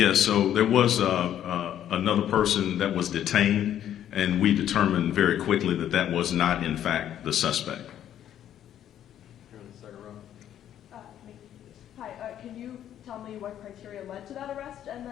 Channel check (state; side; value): quieter; right; 10.8 dB